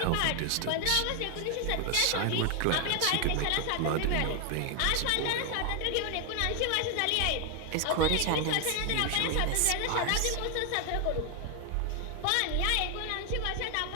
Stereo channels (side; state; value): both; different; correlation 0.00